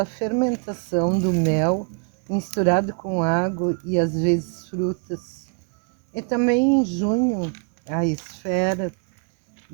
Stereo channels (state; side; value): quieter; left; 38.3 dB